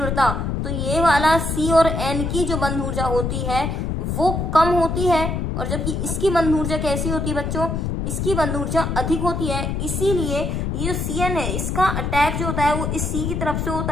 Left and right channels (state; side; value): noise; left; rumble, 1 dB below the sound